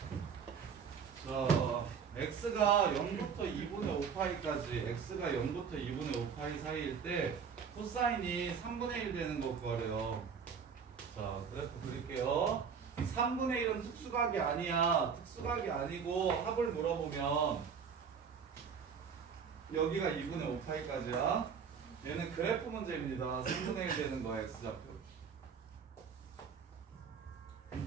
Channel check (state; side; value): quieter; left; 6.5 dB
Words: 자, x가 0부터 2분의 5파이까지 x가 0부터 2분의 5파이 사이일 때 코사인이 3분의 1 되는 거 구하래요. 자, 그래프 그릴게요. 3분의 1은 특수각이 아니야. 특수각이 아니고 합을 물어보면 여기가 2분의 5파이까지야. 얘는 그래프 문제입니다. 3분의 1 되는 거야, x좌표.